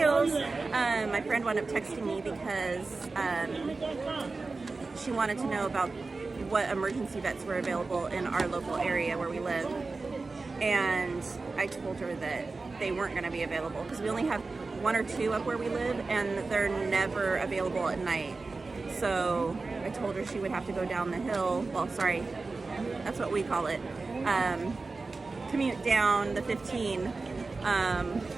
my friend wound up texting me because she wanted to know about what emergency vets were available in our local area where we live. And I told her that they weren't going to be available because we only have one or two up where we live, and they're never available at night. So I told her she would have to go down the hill. Well, sorry, that's what we call it. Commute down the 15,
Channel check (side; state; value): left; quieter; 3.8 dB